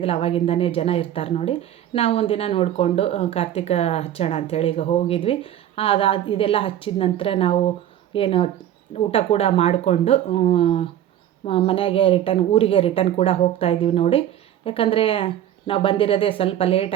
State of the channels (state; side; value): quieter; left; 11.4 dB